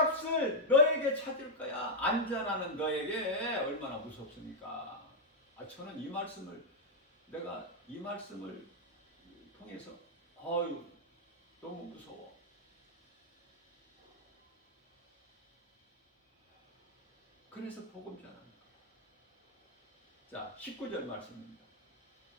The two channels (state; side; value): normal; both; correlation -0.01